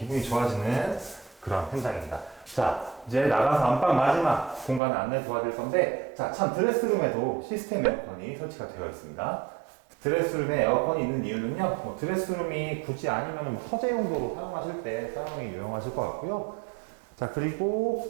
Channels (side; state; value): left; drops out; at 4.8 s